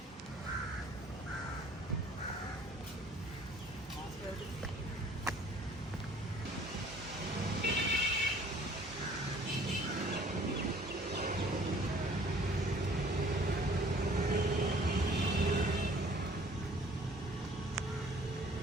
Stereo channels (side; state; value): both; normal; correlation 0.54